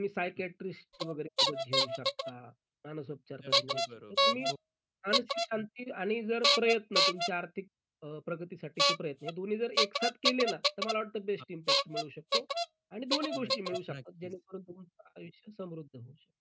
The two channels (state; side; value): identical; both; correlation 1.00